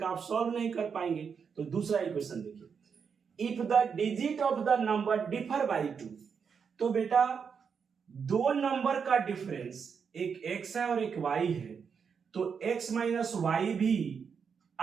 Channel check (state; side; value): quieter; left; 6.4 dB